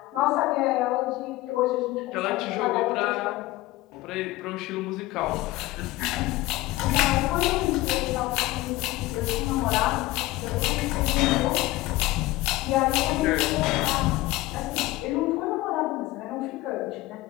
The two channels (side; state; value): right; quieter; 18.6 dB